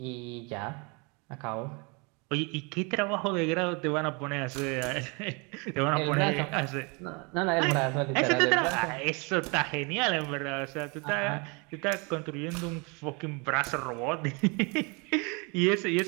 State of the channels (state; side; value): quieter; left; 30.8 dB